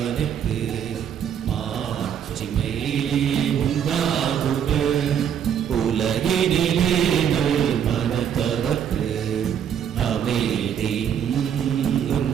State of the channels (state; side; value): quieter; left; 8.7 dB